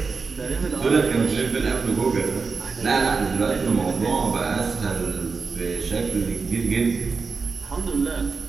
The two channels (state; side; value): quieter; left; 4.7 dB